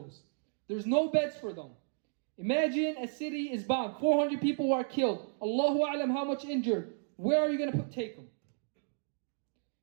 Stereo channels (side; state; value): left; silent; digital silence